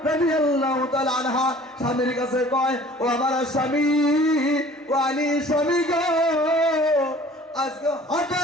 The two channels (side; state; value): both; normal; correlation 0.49